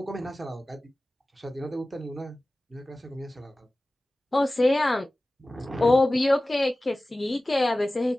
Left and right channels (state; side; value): normal; both; correlation 0.97